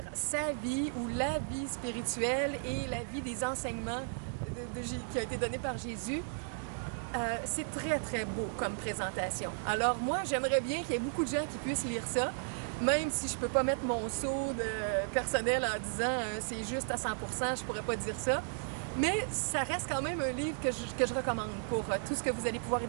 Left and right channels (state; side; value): silent; left; digital silence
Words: sa vie ou la vie spirituelle et la vie des enseignements qui a été donné par Jésus, c'est très beau comme présentation. Alors moi, j'aimerais bien qu'il y ait beaucoup de gens qui puissent lire ça, même si je peux pas mettre mon saut de personnel en disant c'est juste à 100%, je pourrais pas dire ça. Mais ça reste quand même un livre que je recommande pour tout ce que vous allez pouvoir y